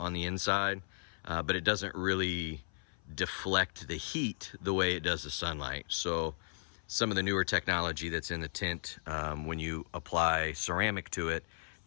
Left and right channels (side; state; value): right; silent; 54 dB below the other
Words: the inside, but it doesn't really deflect the heat the way it does the sunlight. So some of the newer technology that's in the tint, when you apply ceramic to it,